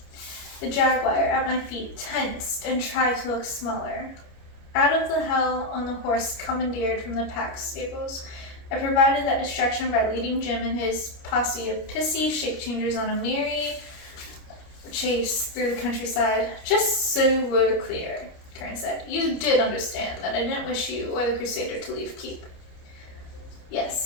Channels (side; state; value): right; late; 29 ms